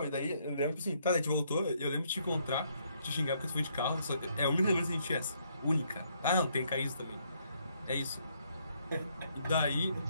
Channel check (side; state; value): both; inverted; correlation -0.71